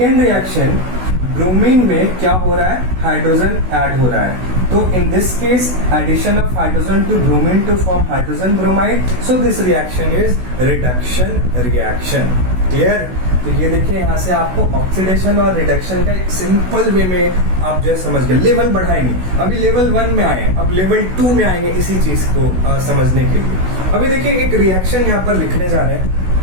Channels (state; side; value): late; left; 16 ms